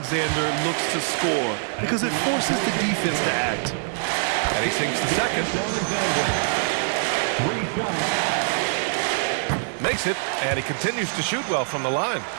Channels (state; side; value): silent; left; digital silence